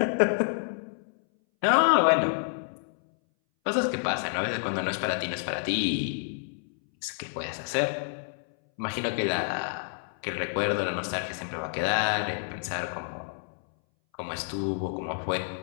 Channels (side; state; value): right; silent; 59 dB below the other